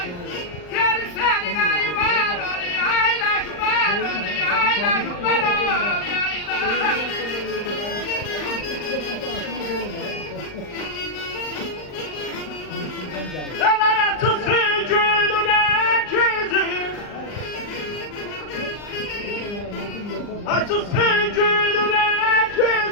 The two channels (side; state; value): right; late; 39 ms